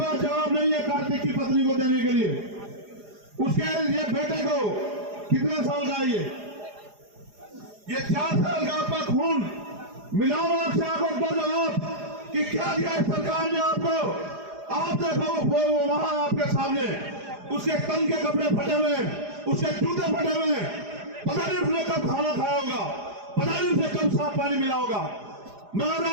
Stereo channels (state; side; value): late; left; 4.9 ms